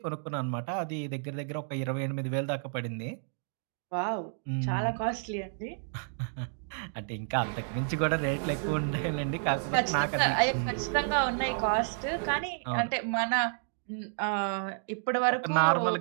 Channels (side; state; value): left; silent; digital silence